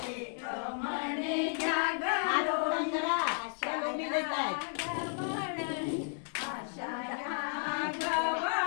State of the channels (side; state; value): right; silent; 56 dB below the other